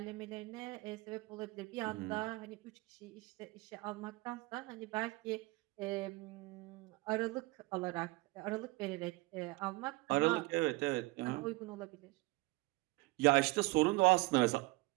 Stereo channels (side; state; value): left; quieter; 22.0 dB